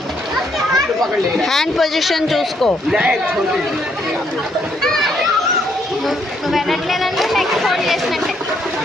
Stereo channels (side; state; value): both; normal; correlation 0.72